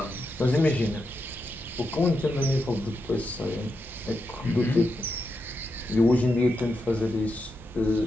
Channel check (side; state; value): both; normal; correlation 0.86